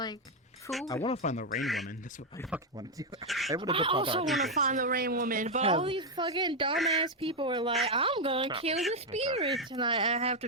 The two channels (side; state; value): both; normal; correlation 0.02